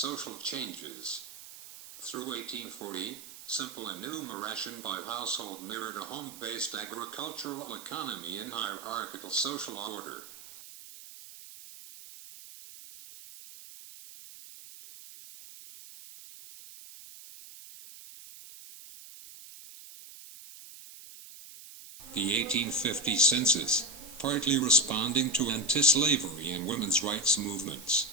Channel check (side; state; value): right; noise; hiss, 16 dB below the sound